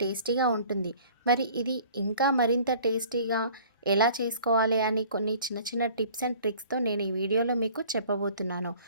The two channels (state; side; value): inverted; both; correlation -0.50